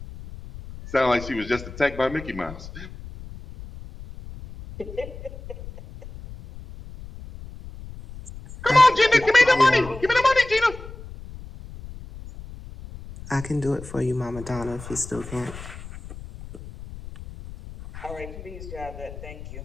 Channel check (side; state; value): left; noise; rumble, 14 dB below the sound